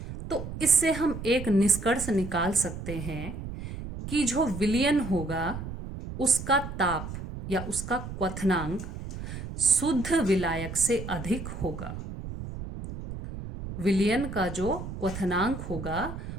तो इससे हम एक निष्कर्ष निकाल सकते हैं कि जो विलयन होगा उसका ताप या उसका क्वथनांक शुद्ध विलायक से अधिक होगा। विलयन का जो क्वथनांक होगा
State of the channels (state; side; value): noise; right; rumble, 9 dB below the sound